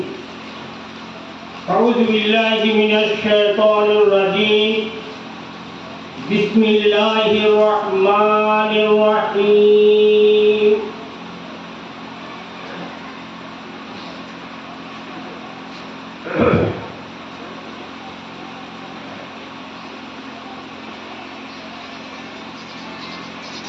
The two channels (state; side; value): identical; both; correlation 1.00